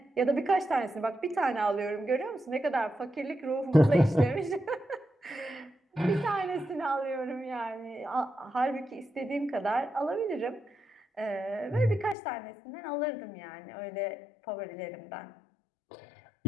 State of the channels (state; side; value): drops out; right; at 12.2 s